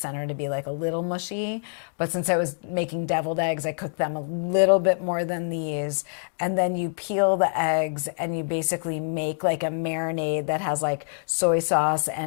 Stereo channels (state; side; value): silent; right; digital silence